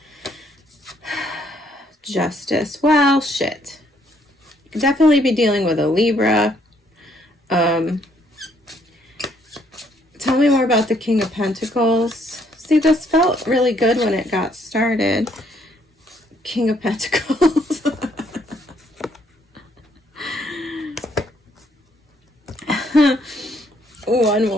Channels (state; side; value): normal; both; correlation 0.68